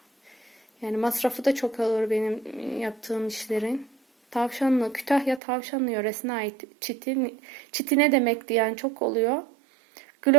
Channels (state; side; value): drops out; left; at 5.4 s